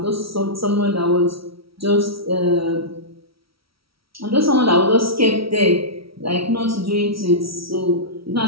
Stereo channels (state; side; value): late; left; 0.75 ms